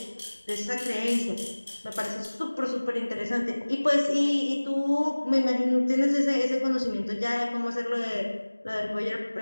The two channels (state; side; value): inverted; both; correlation -1.00